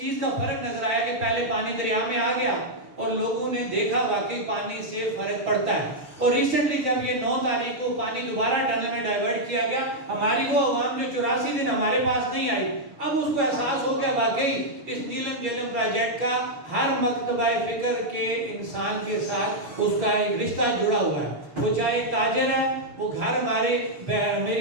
کا فرق نظر آیا کہ پہلے پانی دریا میں آ گیا اور لوگوں نے دیکھا واقعی پانی سے فرق پڑتا ہے۔ اور ریسنٹلی جب یہ 9 تاریخ کو پانی دوبارہ ٹنل میں ڈائیورٹ کیا گیا، ہماری وہ عوام جو 84 دن ہمارے پاس نہیں آئی، اب اس کو احساس ہو گیا واقعی اس نیلم گیلم پروجیکٹ کا ہر مکتبہ فکر کے انسان کے ساتھ اس کا ایک رشتہ جڑا ہوا ہے۔ وہ چاہے تاجر ہے، وہ گھر ہمارے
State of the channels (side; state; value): left; late; 6.3 ms